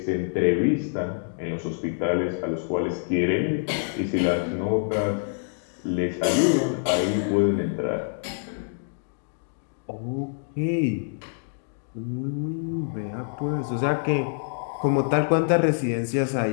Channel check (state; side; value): silent; right; digital silence